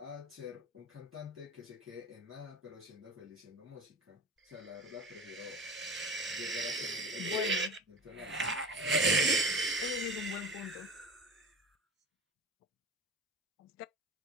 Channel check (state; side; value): normal; both; correlation 0.34